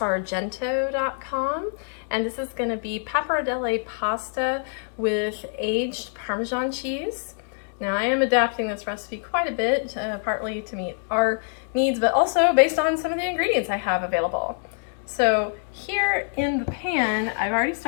and this is going to be pappardelle pasta with aged Parmesan cheese. Now I am adapting this recipe quite a bit, partly to meet our needs, but also based on some of the ingredients I have available. So here in the pan, I've already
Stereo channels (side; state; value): right; silent; 61 dB below the other